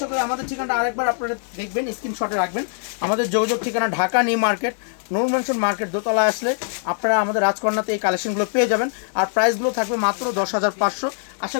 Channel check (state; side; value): silent; right; digital silence